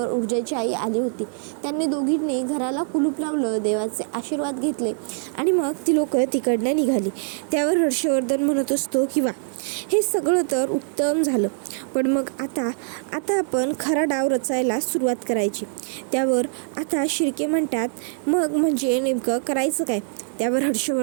ऊर्जाची आई आली होती. त्यांनी दोघींनी घराला कुलूप लावलं, देवाचे आशीर्वाद घेतले आणि मग ती लोक तिकडनं निघाली. त्यावर हर्षवर्धन म्हणत असतो की वा, हे सगळं तर उत्तम झालं, पण मग आता आपण खरा डाव रचायला सुरुवात करायची. त्यावर आता शिर्के म्हणतात, मग म्हणजे नेमकं करायचं काय? त्यावर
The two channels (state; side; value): silent; left; digital silence